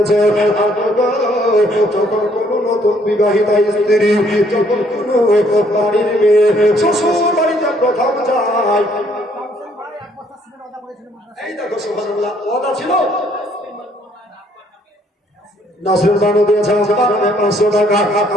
যখন কোনো নতুন বিবাহিতা স্ত্রী যখন কোনো বাড়ির মেয়ে শ্বশুর বাড়িতে প্রথম যায় এই দেখো সুবহানাল্লাহ ওয়াদা ছিল নাসরুল বানু দিয়েছে আমাকে 500 টাকা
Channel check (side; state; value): both; normal; correlation 0.65